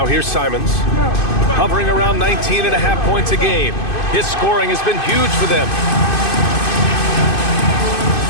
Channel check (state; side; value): late; right; 2.5 ms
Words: here's Simons, hovering around 19.5 points a game. His scoring has been huge for them.